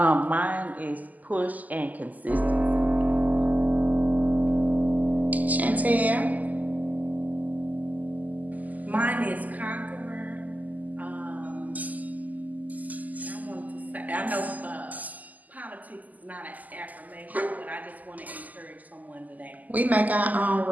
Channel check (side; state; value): left; late; 0.080 ms